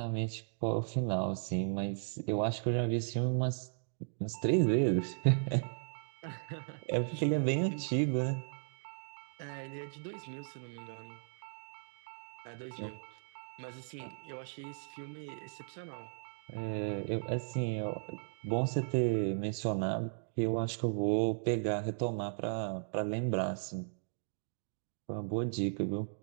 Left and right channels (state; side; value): silent; left; digital silence